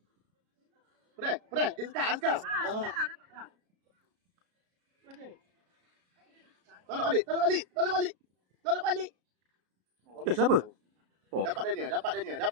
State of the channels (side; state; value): left; late; 33 ms